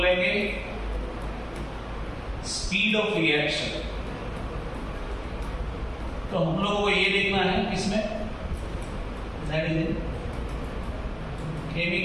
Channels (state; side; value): identical; both; correlation 1.00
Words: स्पीड ऑफ रिएक्शन। तो हम लोगों को ये देखना है किसमें, that is in